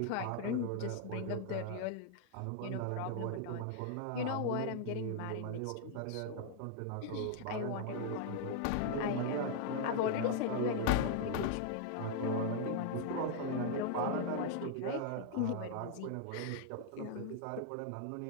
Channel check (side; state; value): both; different; correlation 0.00